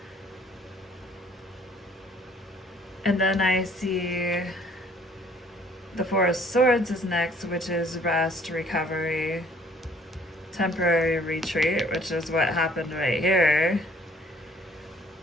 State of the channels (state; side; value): normal; both; correlation 0.58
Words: And then I see the Four of Swords is next, which is rest, recovery, temporary retreat, which is what happened right here.